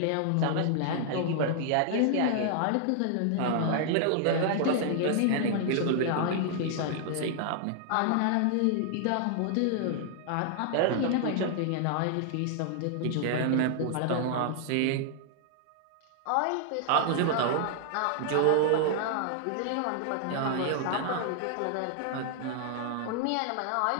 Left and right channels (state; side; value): different; both; correlation -0.01